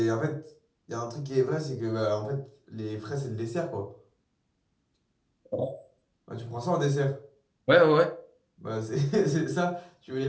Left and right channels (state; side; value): identical; both; correlation 1.00